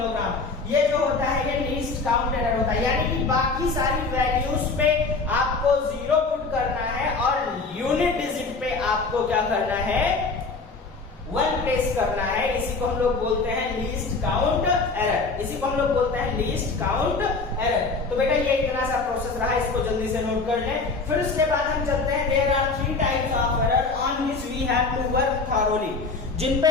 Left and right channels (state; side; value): quieter; right; 4.0 dB